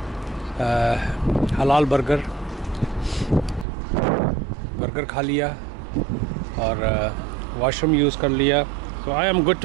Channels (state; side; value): drops out; left; at 3.7 s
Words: हलाल बर्गर खा लिया और वॉशरूम यूज़ कर लिया। तो I am good